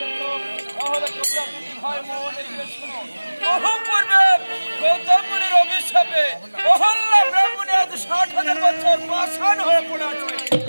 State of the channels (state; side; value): inverted; both; correlation -1.00